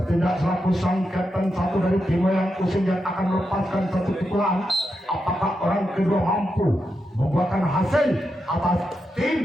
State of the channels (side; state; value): both; normal; correlation 0.86